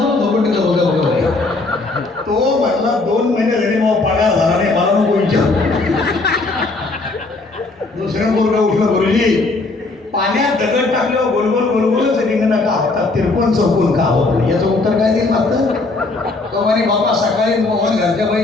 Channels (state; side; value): quieter; right; 3.4 dB